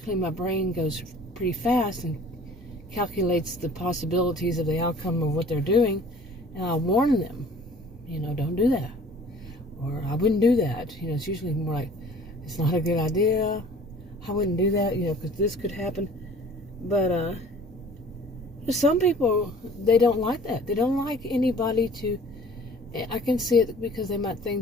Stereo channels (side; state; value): both; normal; correlation 0.49